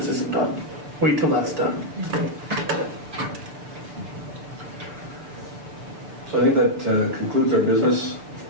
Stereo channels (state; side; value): late; left; 6.8 ms